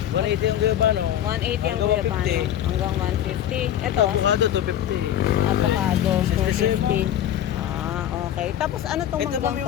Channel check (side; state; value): right; quieter; 11.0 dB